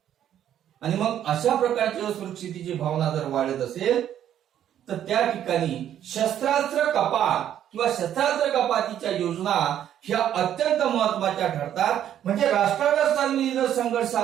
आणि मग अशा प्रकारची असुरक्षिततेची भावना जर वाढत असेल तर त्या ठिकाणी शस्त्रास्त्र कपात किंवा शस्त्रास्त्र कपातीच्या योजना ह्या अत्यंत महत्वाच्या ठरतात. म्हणजे राष्ट्रांमधील जर संघर्ष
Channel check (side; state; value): left; quieter; 10.6 dB